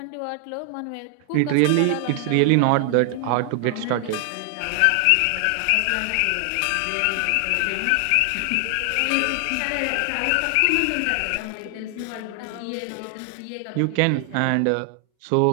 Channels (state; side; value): different; both; correlation 0.00